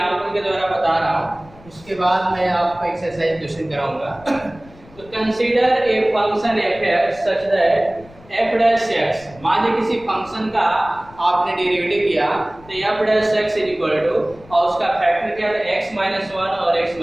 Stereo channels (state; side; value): noise; left; rumble, 24 dB below the sound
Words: के द्वारा बता रहा हूँ, उसके बाद मैं आपको एक्सरसाइज क्वेश्चन कराऊंगा। तो consider a function f such that f dash x, मान लीजिए किसी फंक्शन का आपने डेरिवेटिव किया तो f dash x is equal to और उसका फैक्टर क्या था x-1 और